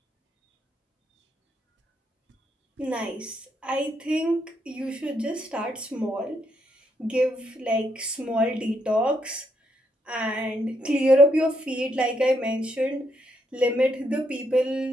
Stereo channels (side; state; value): both; normal; correlation 0.76